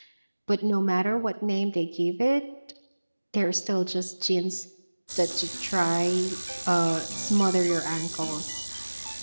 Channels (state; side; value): inverted; both; correlation -1.00